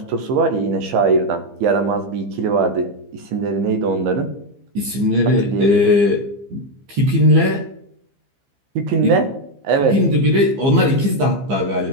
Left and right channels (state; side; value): late; left; 15 ms